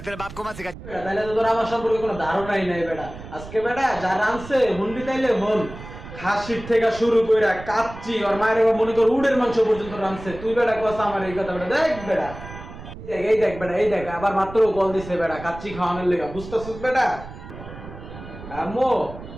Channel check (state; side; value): noise; right; rumble, 14 dB below the sound